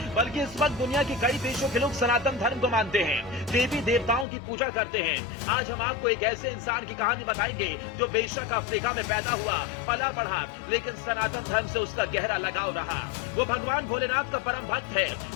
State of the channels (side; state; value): right; drops out; at 4.2 s